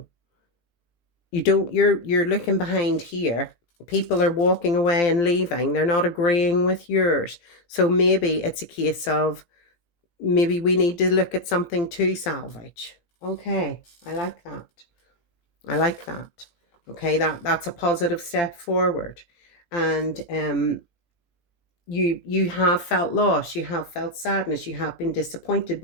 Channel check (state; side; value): late; right; 17 ms